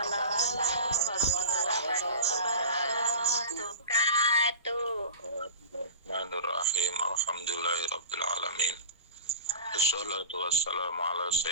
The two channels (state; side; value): inverted; both; correlation -0.34